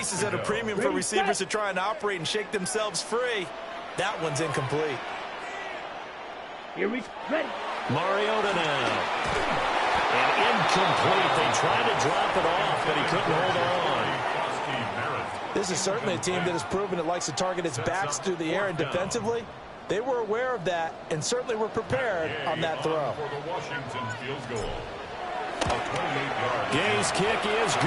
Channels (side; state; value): both; identical; correlation 1.00